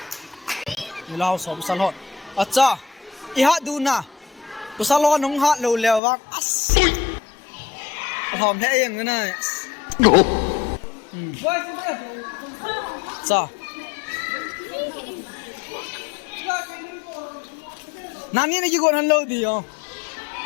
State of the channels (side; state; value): right; drops out; at 6.0 s